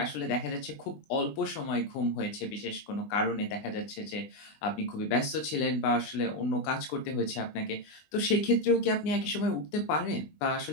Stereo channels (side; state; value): right; late; 20 ms